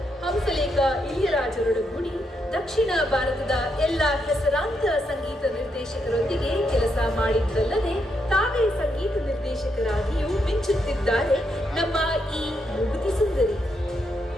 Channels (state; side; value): normal; both; correlation 0.79